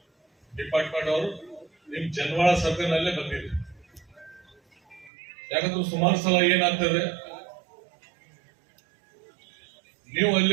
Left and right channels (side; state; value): left; drops out; at 5.1 s